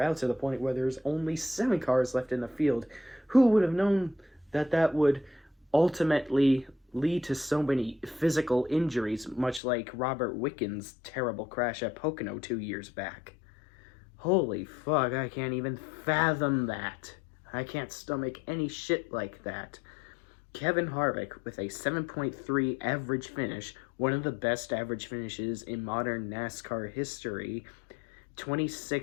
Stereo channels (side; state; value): right; drops out; at 9.6 s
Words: out to the point where there's only 7 cars left in the field. Who would have known that would ultimately lead to so many physical injuries, much like Robert Wickens' terrible crash at Pocono 2 years back? Holy fuck, I can't even fathom that. I can't stomach any shit like that. Kevin Harvick with a 7.3 average finish, one of the best average finishes in modern NASCAR history,